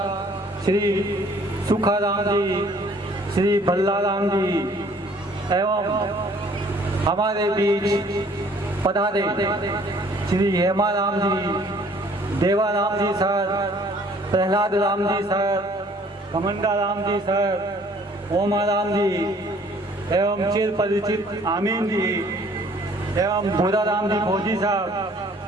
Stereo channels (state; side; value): normal; both; correlation 0.57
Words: श्री सुखाराम जी, श्री भल्लाराम जी, एवं हमारे बीच पधारे श्री हेमाराम जी, देवाराम जी sir, Prahlad Ram ji sir, कमंडा Ram ji sir, Omaram जी, एवं चिर परिचित आमीन जी, एवं भूरा राम जी फौजी साहब,